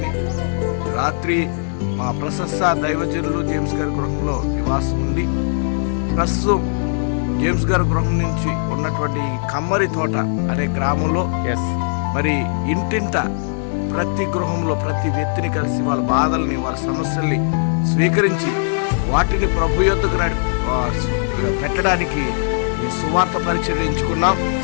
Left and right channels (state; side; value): silent; right; digital silence